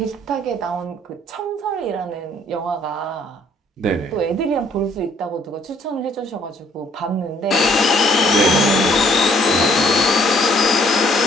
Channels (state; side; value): normal; both; correlation 0.63